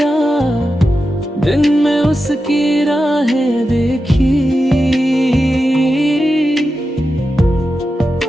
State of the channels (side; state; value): both; normal; correlation 0.90